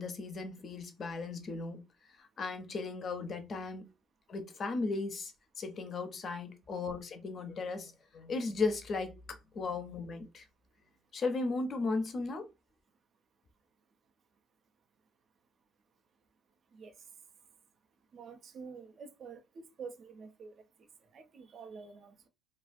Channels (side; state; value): right; quieter; 3.1 dB